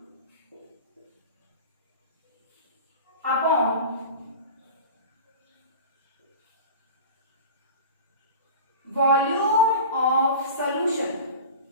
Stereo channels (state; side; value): inverted; both; correlation -0.33